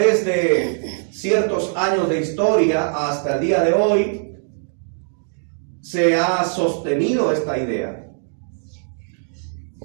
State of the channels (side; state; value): left; silent; digital silence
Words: de ciertos años de historia hasta el día de hoy se ha sostenido esta idea.